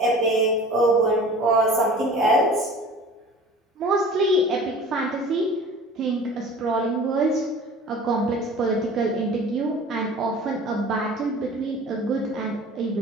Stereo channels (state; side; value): normal; both; correlation 0.43